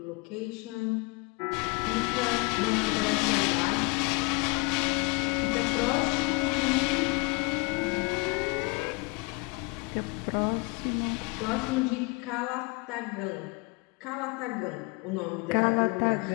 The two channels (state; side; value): quieter; right; 27.8 dB